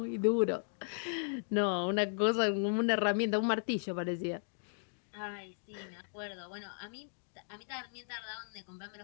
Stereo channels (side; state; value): right; silent; digital silence